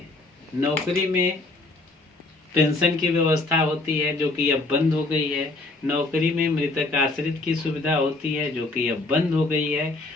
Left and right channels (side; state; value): right; quieter; 3.2 dB